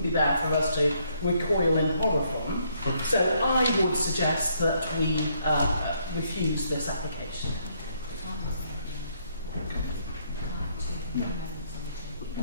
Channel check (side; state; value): both; inverted; correlation -0.71